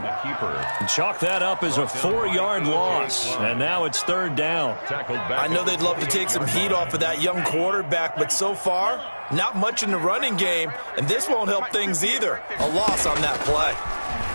And chalk that up as a 4-yard loss. And now it's 3rd down. I know they'd love to take some heat off of that young quarterback, but so far, not much in the running game. And this won't help things either. A loss on that play.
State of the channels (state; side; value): inverted; both; correlation -1.00